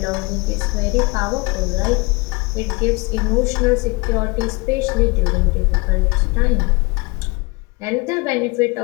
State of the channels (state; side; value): quieter; right; 26.9 dB